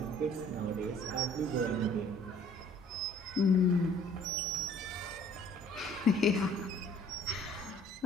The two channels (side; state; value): both; normal; correlation 0.56